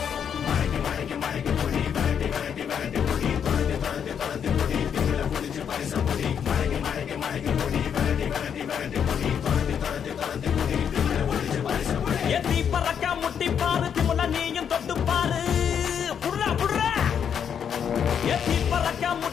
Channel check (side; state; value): right; quieter; 7.9 dB